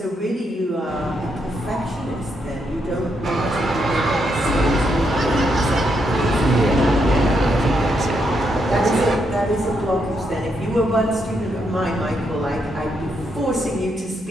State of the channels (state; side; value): normal; both; correlation 0.79